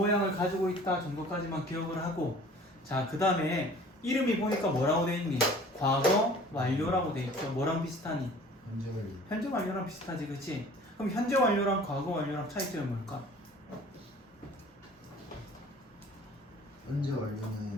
가지고 있다 정도까지만 기억을 하고 자, 그 다음에 이름이 보니까 뭐라고 돼 있니? 과거 완료라고 돼 있죠. 뭐랑 비슷하니? 현재 완료. 현재 완료랑 비슷하지, 그치? 그럼 현재 완료랑 과거 완료랑 차이점이 뭘까? 현재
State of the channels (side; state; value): both; normal; correlation 0.48